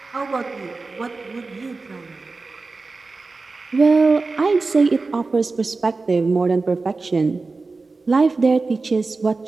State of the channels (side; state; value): left; quieter; 3.8 dB